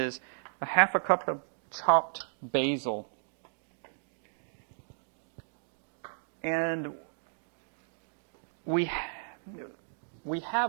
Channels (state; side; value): silent; left; digital silence